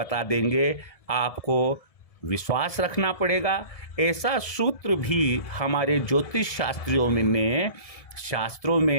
देंगे। आपको विश्वास रखना पड़ेगा। ऐसा सूत्र भी हमारे ज्योतिष शास्त्रों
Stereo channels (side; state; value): right; late; 1.7 ms